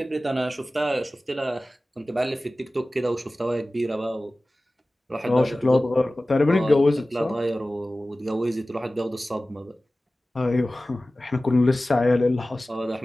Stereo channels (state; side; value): normal; both; correlation 0.97